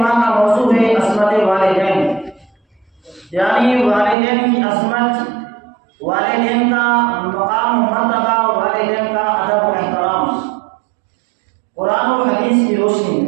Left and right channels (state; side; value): drops out; left; at 4.2 s